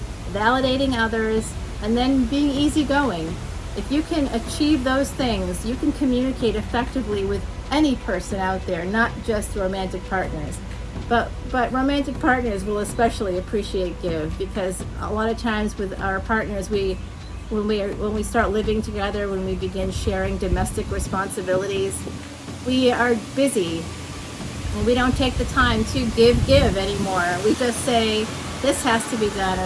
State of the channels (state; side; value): identical; both; correlation 1.00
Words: validating others, and then being easygoing. If you can achieve those things, you can communicate effectively with any person out there, not just romantic partners. But romantic partners will especially appreciate give, because a lot of times with our partners, when we start living together, when we begin sharing domestic responsibilities, we are busy and we don't take the time to give anymore. We just say, this has to be done,